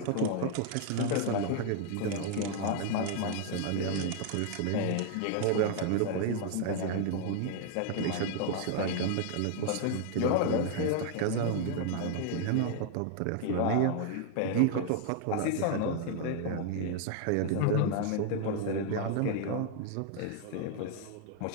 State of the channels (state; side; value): different; both; correlation 0.00